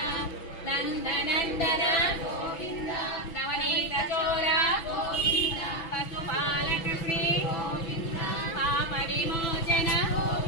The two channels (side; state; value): right; late; 6.0 ms